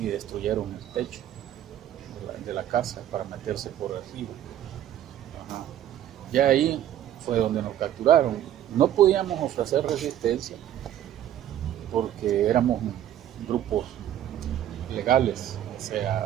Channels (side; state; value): left; quieter; 11.5 dB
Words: destruyeron el techo de la casa para meterse por arriba. Ajá. Ya ahí fue donde nos capturaron. No podíamos ofrecer resistencia porque éramos grupos legales, o